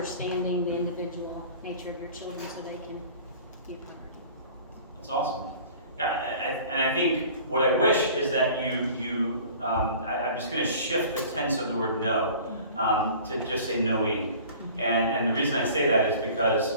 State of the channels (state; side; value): inverted; both; correlation -0.45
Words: the individual nature of your children so they can be a priority. That's awesome. And I think what I wish is that I'm just going to shift the tense of the word know to just say knowing. And the reason I say that is